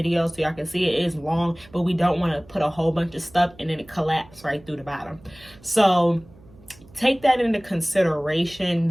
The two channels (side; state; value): right; noise; hum, 24 dB below the sound